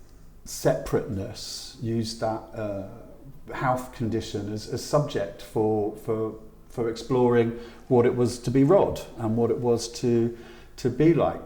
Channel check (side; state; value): both; identical; correlation 1.00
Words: separateness, use that health condition as subject for exploring what it was to be Rod and what it was to be like